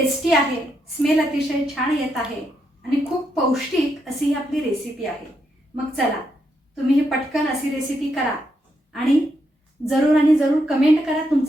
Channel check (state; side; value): normal; both; correlation 0.80